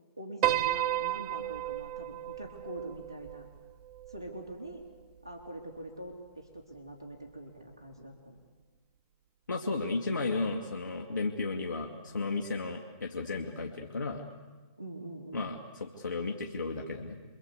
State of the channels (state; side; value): inverted; both; correlation -0.39